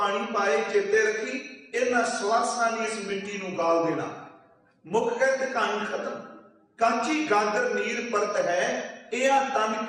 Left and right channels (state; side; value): identical; both; correlation 1.00